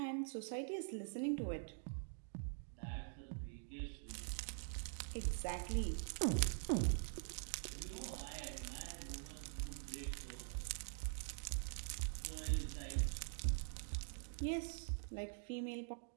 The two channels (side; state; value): left; silent; digital silence